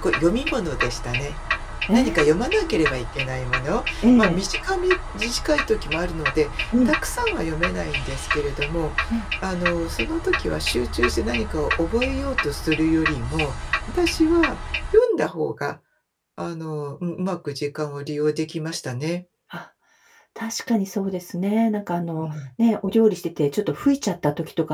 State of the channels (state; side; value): identical; both; correlation 1.00